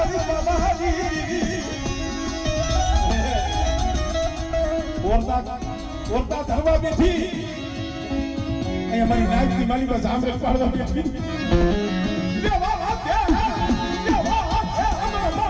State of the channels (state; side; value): identical; both; correlation 1.00